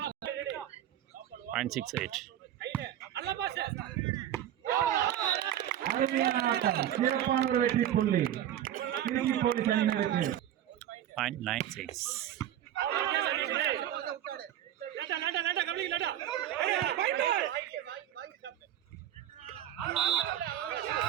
Point 6-8. அருமையான ஆட்டம். சிறப்பான ஒரு வெற்றி புள்ளி திருச்சி போலீஸ் அணியினருக்கு. Point 9-6.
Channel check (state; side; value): quieter; left; 11.5 dB